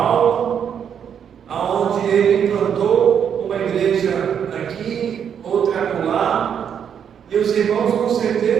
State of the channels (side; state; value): left; quieter; 8.1 dB